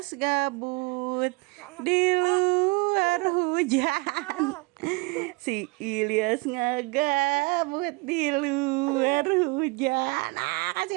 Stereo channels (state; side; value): quieter; left; 26.1 dB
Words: gabut di luar hujan. Si Ilyas ngegabut di luar hujan.